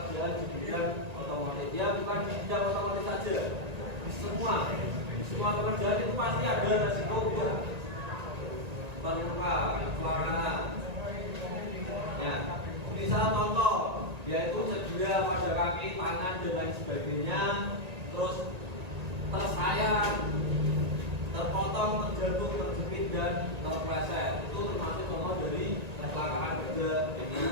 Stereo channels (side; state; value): left; late; 1.8 ms